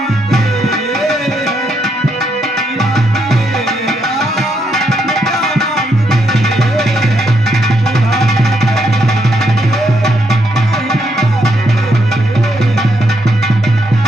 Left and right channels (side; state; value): both; normal; correlation 0.77